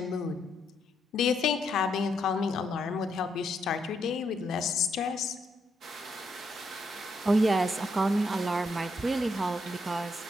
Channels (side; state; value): both; normal; correlation 0.78